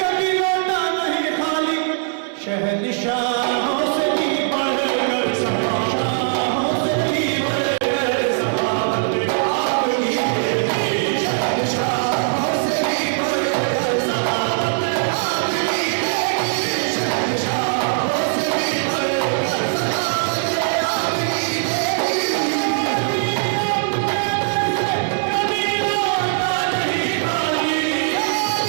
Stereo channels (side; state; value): left; silent; digital silence